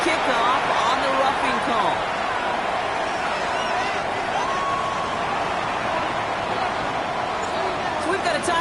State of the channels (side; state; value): both; identical; correlation 1.00